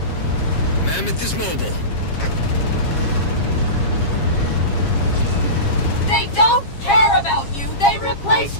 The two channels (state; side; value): late; right; 7.4 ms